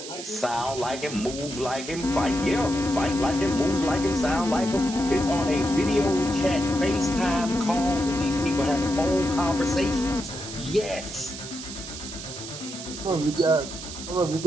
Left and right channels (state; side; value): noise; right; hiss, 10 dB below the sound